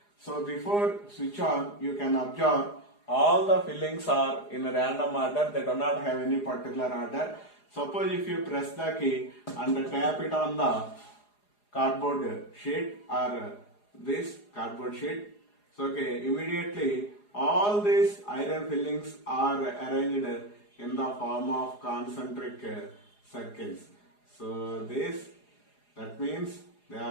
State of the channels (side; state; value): right; late; 4.9 ms